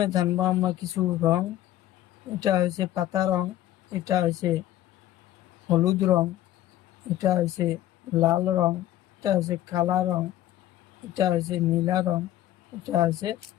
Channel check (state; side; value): quieter; right; 13.6 dB